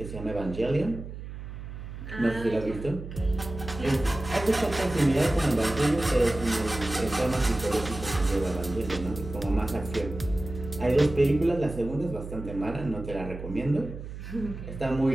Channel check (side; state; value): right; noise; hum, 10 dB below the sound